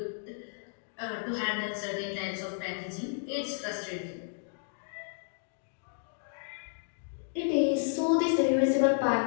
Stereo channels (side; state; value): right; silent; digital silence